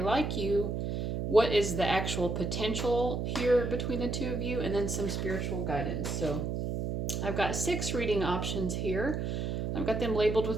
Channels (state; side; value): noise; right; hum, 2 dB below the sound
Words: like you? What is the actual potential here between the two of you? And then some spiritual guidance. So I've got 6 reading options here. I've got them labeled